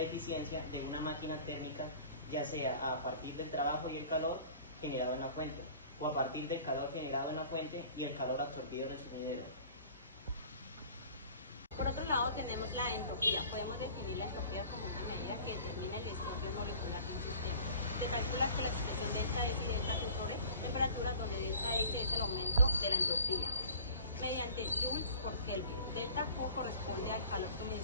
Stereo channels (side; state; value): both; inverted; correlation -0.45